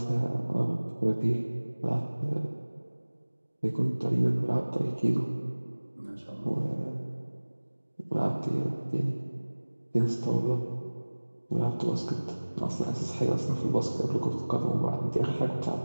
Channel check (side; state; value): both; inverted; correlation -1.00